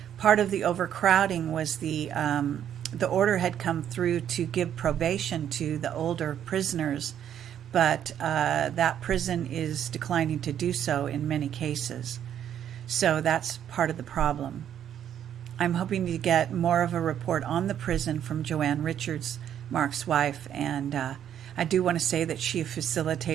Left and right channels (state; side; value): quieter; left; 9.9 dB